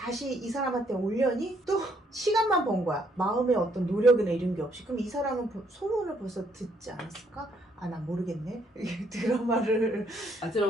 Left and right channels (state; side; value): normal; both; correlation 0.70